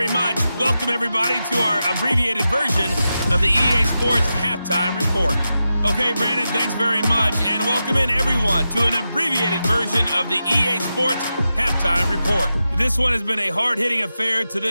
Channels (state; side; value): inverted; both; correlation -0.90